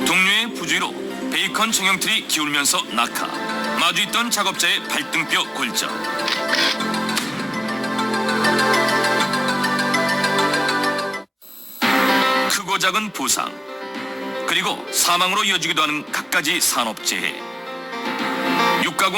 동료의 부주의로 베이컨 정형틀이 기울면서 낙하. 마주 있던 작업자의 발등뼈 골절. 크고 작은 부상, 그리고 사망으로 이어지기도 하는 갖가지 산업재해.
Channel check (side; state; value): both; identical; correlation 1.00